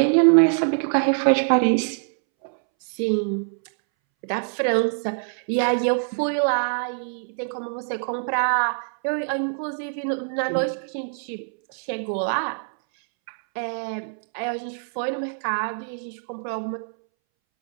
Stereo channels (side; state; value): left; silent; 62 dB below the other